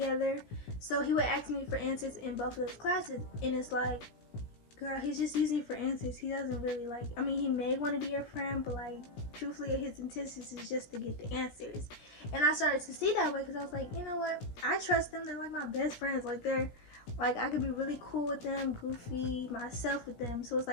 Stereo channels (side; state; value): right; late; 17 ms